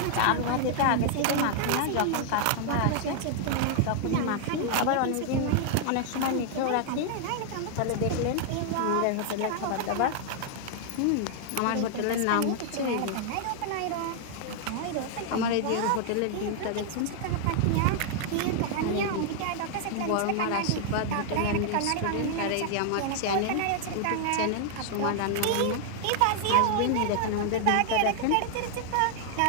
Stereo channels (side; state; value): both; different; correlation 0.00